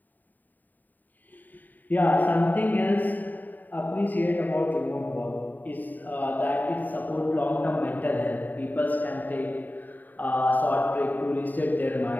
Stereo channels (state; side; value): late; right; 0.087 ms